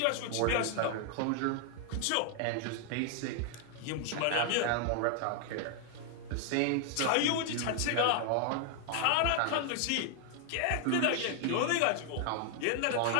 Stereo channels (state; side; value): different; both; correlation 0.00